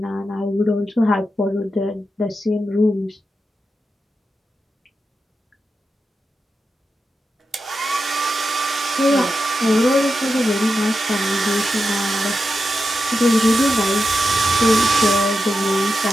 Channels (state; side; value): normal; both; correlation 0.89